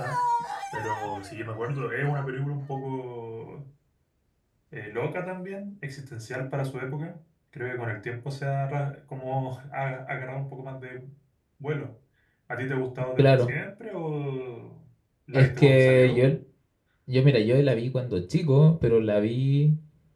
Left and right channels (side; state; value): both; identical; correlation 1.00